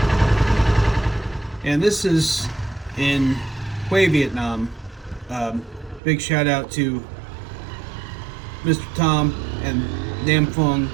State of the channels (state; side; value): drops out; left; at 6.0 s